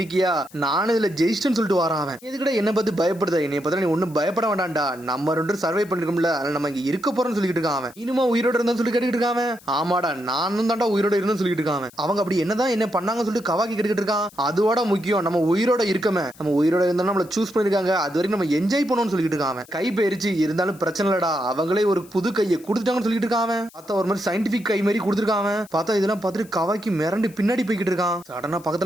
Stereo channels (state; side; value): noise; left; hiss, 24 dB below the sound